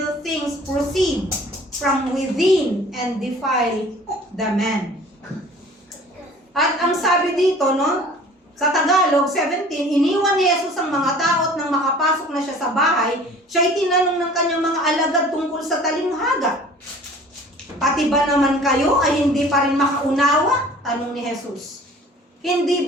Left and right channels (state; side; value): normal; both; correlation 0.48